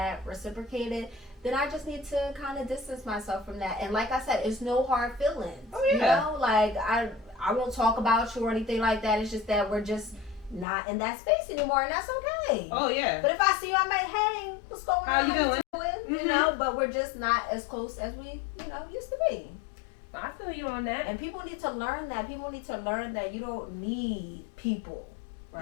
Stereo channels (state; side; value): drops out; right; at 10.7 s